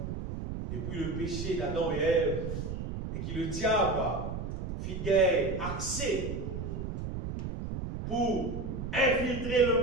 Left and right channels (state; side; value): noise; right; rumble, 5 dB below the sound